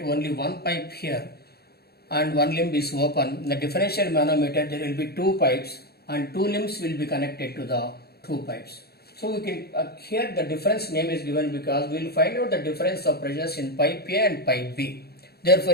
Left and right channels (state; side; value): late; right; 0.46 ms